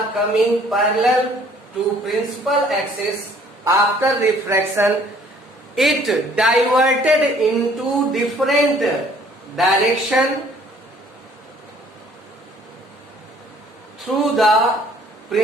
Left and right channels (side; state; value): both; normal; correlation 0.57